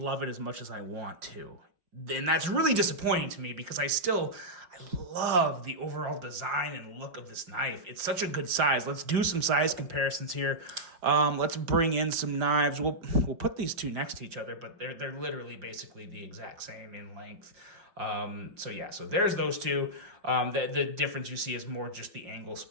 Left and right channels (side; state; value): left; late; 5.5 ms